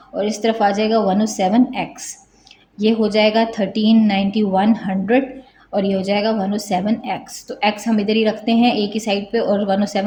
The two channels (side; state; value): both; identical; correlation 1.00